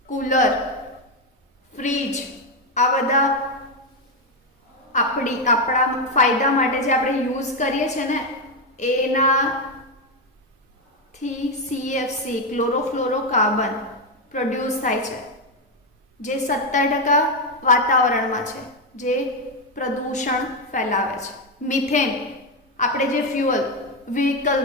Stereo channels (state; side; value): normal; both; correlation 0.07